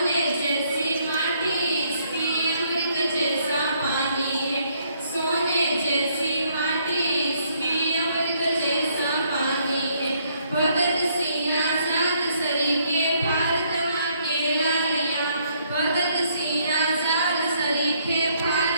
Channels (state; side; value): inverted; both; correlation -0.69